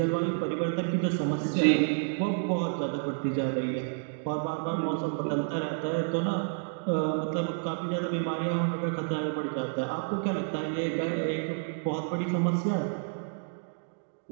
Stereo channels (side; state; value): left; silent; digital silence